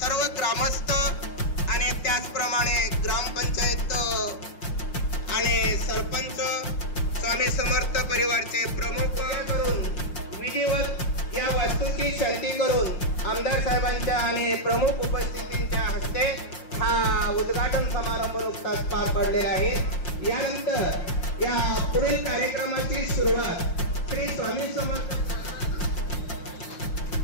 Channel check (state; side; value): late; right; 5.7 ms